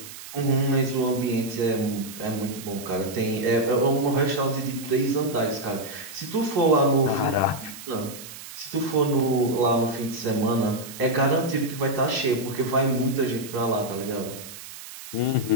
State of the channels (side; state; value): right; noise; hiss, 14 dB below the sound